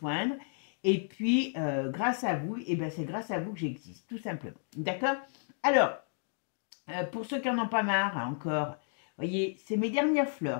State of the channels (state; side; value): silent; right; 56 dB below the other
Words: Et puis, grâce à vous, et ben c'est grâce à vous que j'existe, tout simplement. D'accord? Alors, pour ceux qui n'en ont pas marre encore, voyez, c'est mes dernières